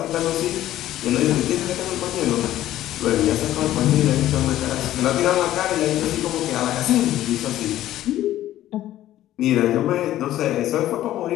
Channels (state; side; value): quieter; right; 13.6 dB